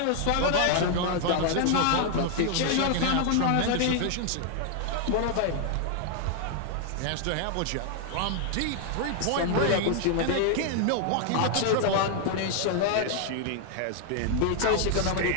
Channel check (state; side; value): different; both; correlation 0.00